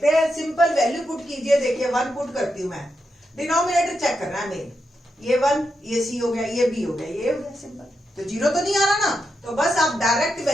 हैं, सिंपल वैल्यू पुट कीजिए। देखिए 1 पुट करती हूं मैं, डिनोमिनेटर चेक करना है मेन, ये 1 ये c हो गया, ये b हो गया, ये हो गया सिंपल। तो 0 तो नहीं आ रहा ना, तो बस आप डायरेक्ट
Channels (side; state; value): both; normal; correlation 0.85